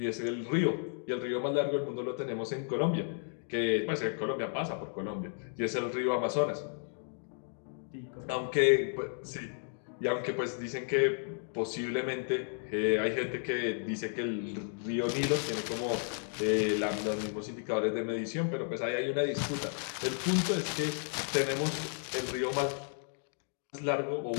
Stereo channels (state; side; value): silent; right; 56 dB below the other